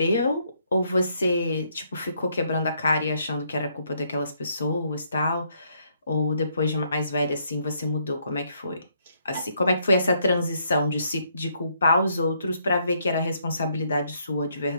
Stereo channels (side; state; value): both; inverted; correlation -0.72